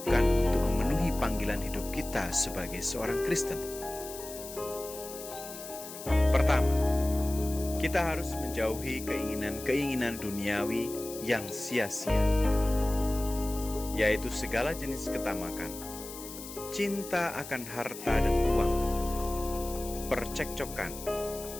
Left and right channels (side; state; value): left; noise; hiss, 12 dB below the sound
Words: untuk memenuhi panggilan hidup kita sebagai seorang Kristen? Pertama, kita harus menjauhi keinginan-keinginan duniawi yang sia-sia, yaitu segala jenis ketamakan, cinta akan harta dan uang, percekcokan,